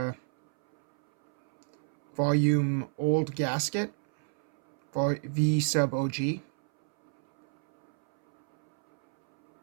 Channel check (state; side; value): silent; left; 58 dB below the other